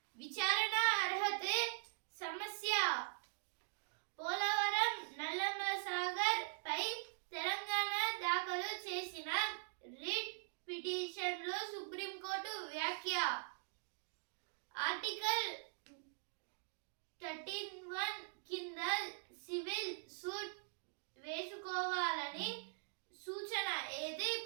విచారణ అర్హతే సమస్య. పోలవరం నల్లమల సాగర్ పై తెలంగాణ దాఖలు చేసిన రిట్ పిటిషన్ లో సుప్రీంకోర్టు వ్యాఖ్య. ఆర్టికల్ 13(1) కింద సివిల్ సూట్ వేసుకోవాలని సూచన. అయితే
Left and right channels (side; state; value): left; silent; digital silence